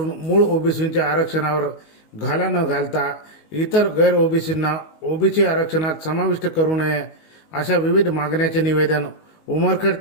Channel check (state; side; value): late; right; 19 ms